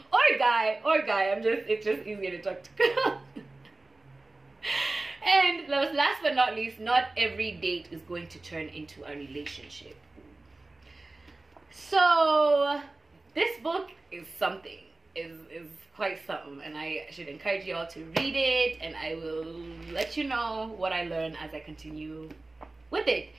or guy. It's just easier to talk to girls. And last but not least, not every date is going to turn into a relationship. So this book is something. Is quite something, and I should encourage you all to read it, and I will let you know what I learn as I continue with it.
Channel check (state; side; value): quieter; left; 3.1 dB